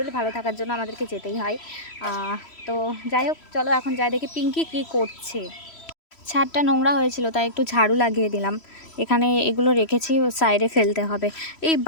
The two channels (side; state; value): right; late; 3.1 ms